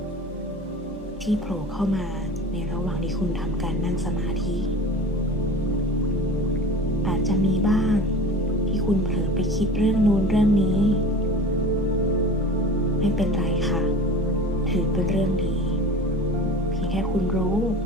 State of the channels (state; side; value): normal; both; correlation 0.38